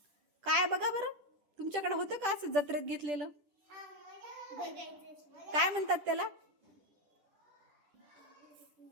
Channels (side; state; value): left; late; 10 ms